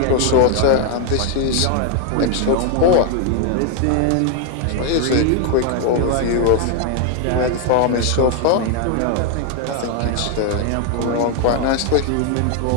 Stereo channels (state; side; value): different; both; correlation 0.00